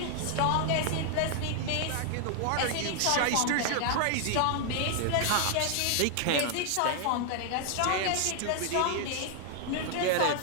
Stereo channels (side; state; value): both; different; correlation 0.00